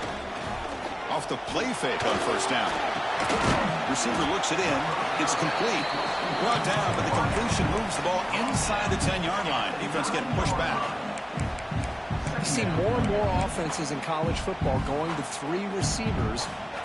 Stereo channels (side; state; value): both; identical; correlation 1.00